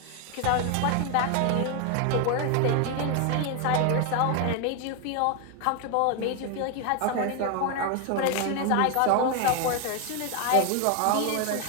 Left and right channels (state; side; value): different; both; correlation 0.01